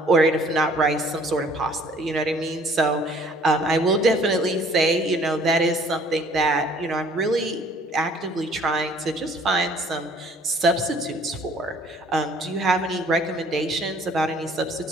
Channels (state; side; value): normal; both; correlation 0.57